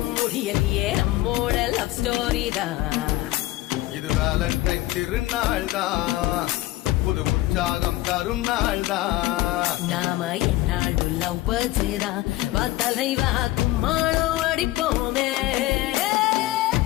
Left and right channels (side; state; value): right; quieter; 17.1 dB